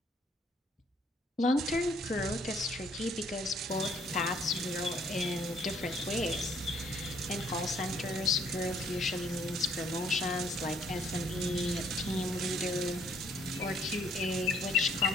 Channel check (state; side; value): normal; both; correlation 0.63